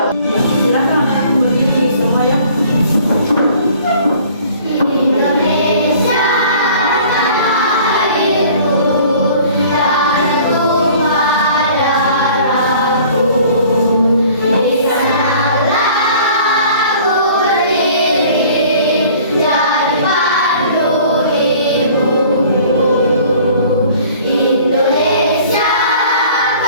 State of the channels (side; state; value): both; inverted; correlation -0.51